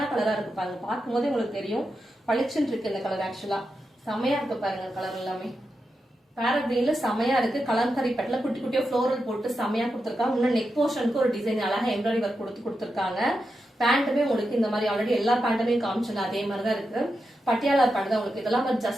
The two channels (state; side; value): normal; both; correlation 0.88